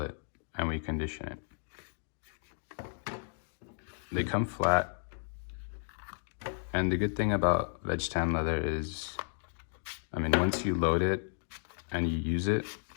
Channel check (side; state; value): right; silent; digital silence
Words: it, and we condition it. They come flat, and the good thing about veg tan leather is, I mean, once you load it and you use it,